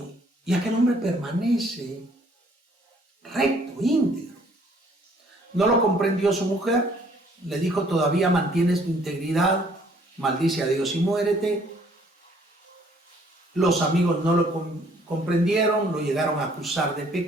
aquel hombre permanece recto, íntegro. No lo comprendió su mujer, le dijo: todavía mantienes tu integridad, maldice a Dios y muérete. Los amigos no lo comprendieron, lo llegaron a acusar de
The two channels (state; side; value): normal; both; correlation 0.61